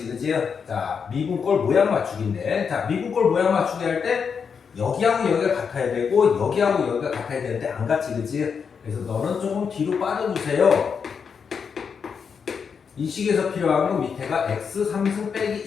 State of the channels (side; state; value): right; quieter; 6.3 dB